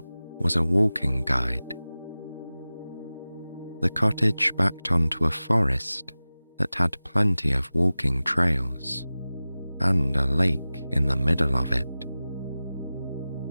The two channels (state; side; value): inverted; both; correlation -0.97